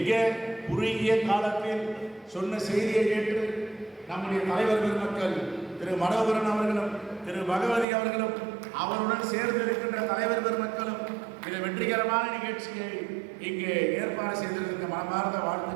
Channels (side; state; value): left; drops out; at 7.9 s